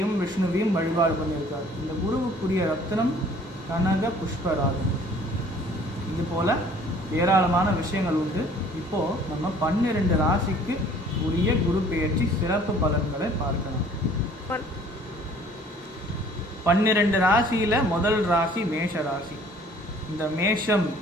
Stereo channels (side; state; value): both; normal; correlation 0.54